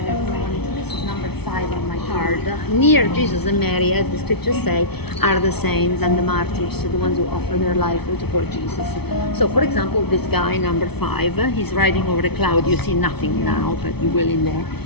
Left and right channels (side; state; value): right; late; 0.98 ms